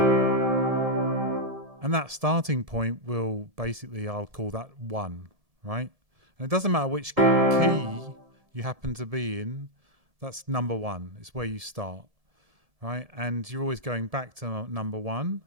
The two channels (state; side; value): late; left; 1.7 ms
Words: And that starting point will basically, I'll call that 1, right? And it doesn't matter which key you happen to be in, that's number 1. It's where you start, right? And you're always going back to number 1.